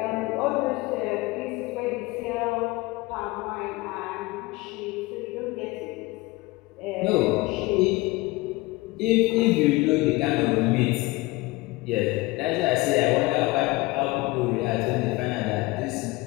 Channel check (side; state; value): right; quieter; 21.5 dB